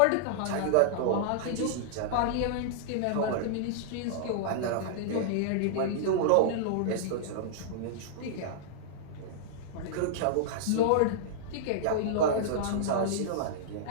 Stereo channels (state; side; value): different; both; correlation -0.02